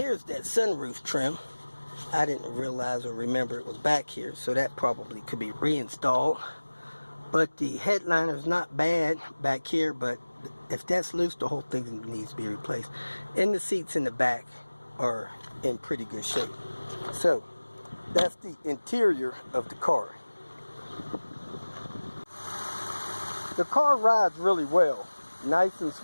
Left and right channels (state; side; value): inverted; both; correlation -1.00